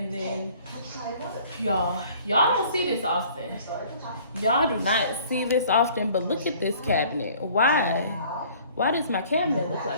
then y'all don't see this often. Y'all do not see this often, but look at this cabinet. Why does my cabinet look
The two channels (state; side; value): inverted; both; correlation -0.54